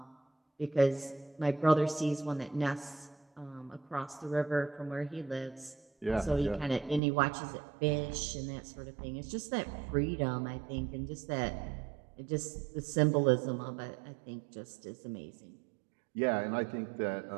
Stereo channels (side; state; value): left; drops out; at 7.0 s